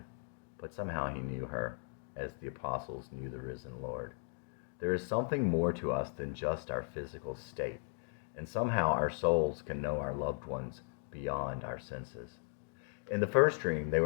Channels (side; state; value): right; silent; 53 dB below the other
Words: but somehow he knew her, as the apostles knew the risen Lord. There is something more to us than just our physical state, and somehow our souls can know our loved ones beyond our senses. In the first dream, they